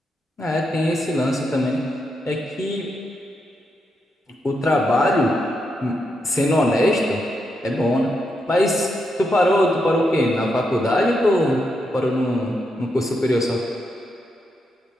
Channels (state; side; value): normal; both; correlation 0.83